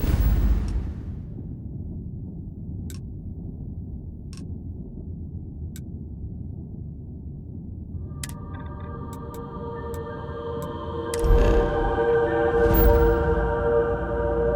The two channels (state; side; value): identical; both; correlation 1.00